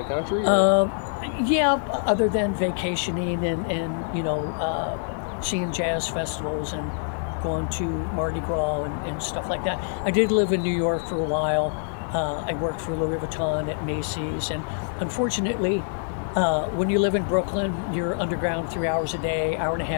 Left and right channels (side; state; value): right; silent; digital silence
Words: country? Yeah, other than vacationing and seeing jazz festivals and going to Mardi Gras and stuff like that. I did live in New York for a while. I worked for Louis Vuitton at Macy's, and unfortunately, when you live in Brooklyn, you're underground 3 hours a day, hour and a